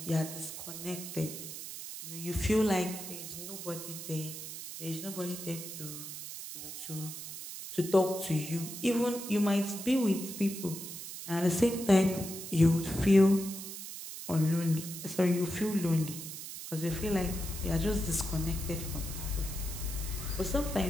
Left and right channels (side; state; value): right; noise; hiss, 9 dB below the sound